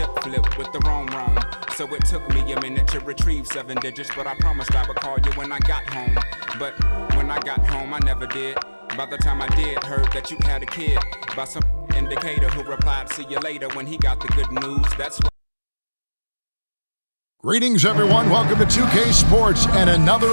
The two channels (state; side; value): inverted; both; correlation -1.00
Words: flip with the roam. So it took me a minute to retrieve 7 digits, but I promised I would call you when I got home. But when I got home, I never did. By the time I did, heard that you had a kid. By some indicator who replied, see you later, when he got the good news. That's what. Greetings, everyone. Welcome to 2K Sports and